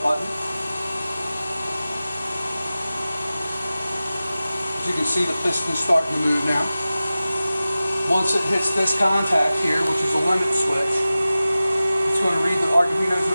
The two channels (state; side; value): inverted; both; correlation -0.96